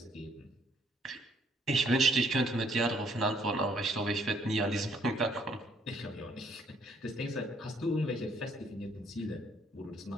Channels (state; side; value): normal; both; correlation 0.66